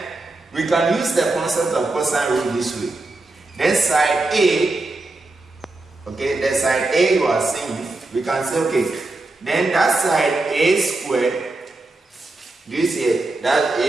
we can use the concept of cosine rule this way. Then side A, okay, the side A you are seeing, we can say, okay, then that side A squared, this here, that's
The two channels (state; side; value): quieter; left; 3.0 dB